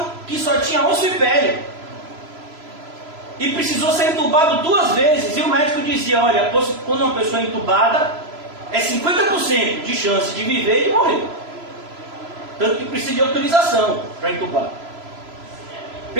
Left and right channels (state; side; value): late; left; 3.0 ms